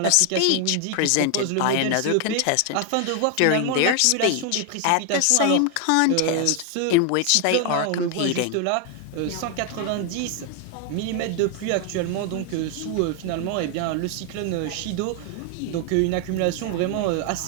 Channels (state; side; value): different; both; correlation 0.00